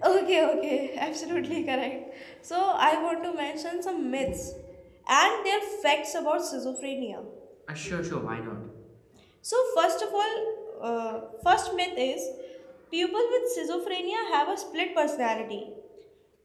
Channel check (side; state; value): both; identical; correlation 1.00